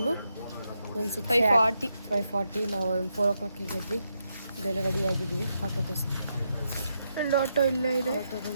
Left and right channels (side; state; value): both; inverted; correlation -0.83